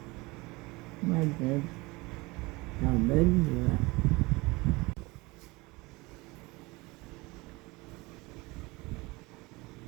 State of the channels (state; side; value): quieter; left; 23.5 dB